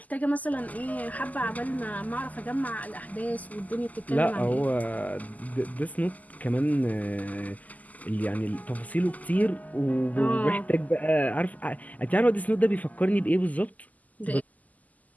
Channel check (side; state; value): right; late; 0.078 ms